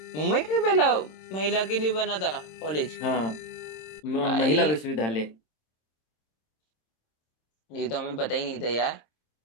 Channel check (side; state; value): right; late; 26 ms